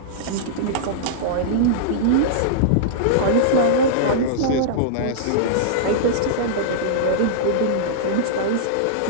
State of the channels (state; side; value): different; both; correlation -0.02